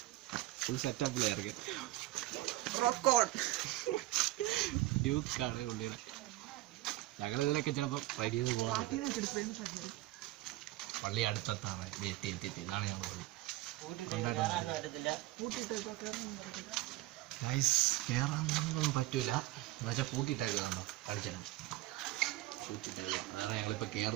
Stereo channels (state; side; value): quieter; left; 17.2 dB